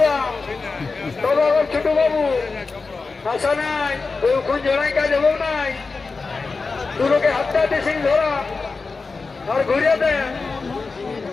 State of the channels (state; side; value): quieter; right; 4.2 dB